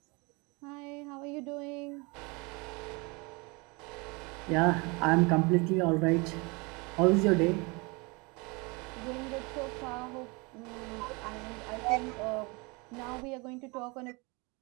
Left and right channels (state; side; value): quieter; left; 28.0 dB